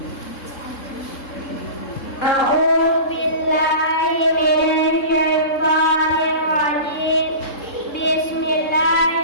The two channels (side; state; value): right; late; 3.7 ms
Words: A'udzu billahi minasy syaithanir rajim.